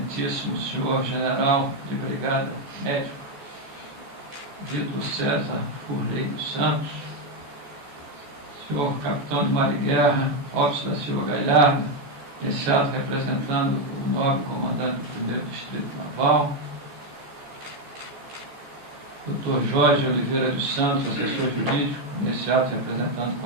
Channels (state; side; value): late; left; 14 ms